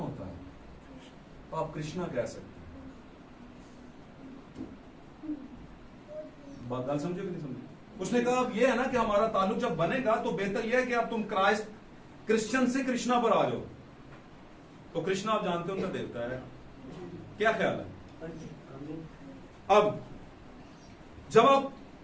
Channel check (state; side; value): identical; both; correlation 1.00